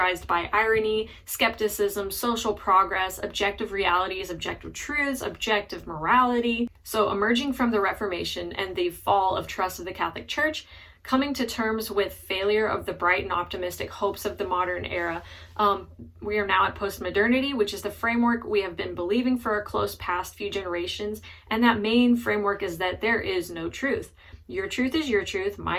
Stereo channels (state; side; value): identical; both; correlation 1.00